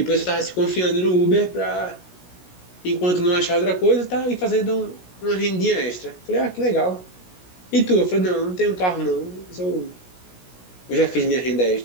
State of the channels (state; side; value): late; right; 16 ms